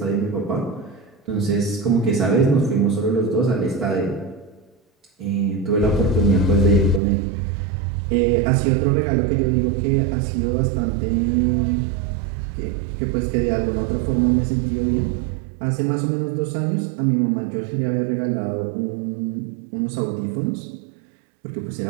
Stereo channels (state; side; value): drops out; left; at 7.0 s